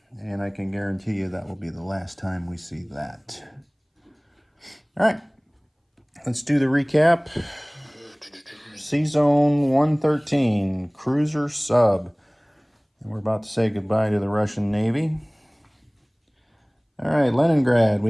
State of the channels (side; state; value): both; identical; correlation 1.00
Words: and I can guarantee you that will be the last time we see that. All right, let's do the recap. C-Zone 113, cruiser sub. And we're about to say goodbye to the Russian Navy. All right, Leningrad, we